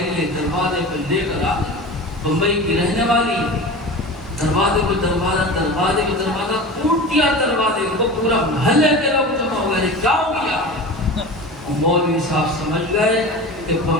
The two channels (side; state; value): both; normal; correlation 0.32